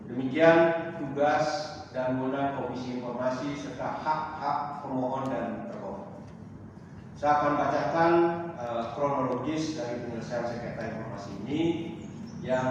Demikian tugas dan wewenang Komisi Informasi serta hak-hak pemohon dan termohon. Saya akan bacakan kronologis dari penyelesaian sengketa informasi ini.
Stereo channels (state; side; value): identical; both; correlation 1.00